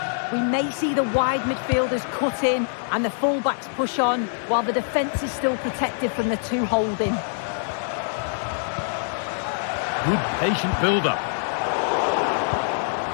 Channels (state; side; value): silent; right; digital silence